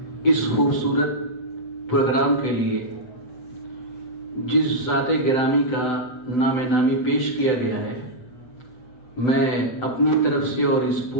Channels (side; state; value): right; late; 7.9 ms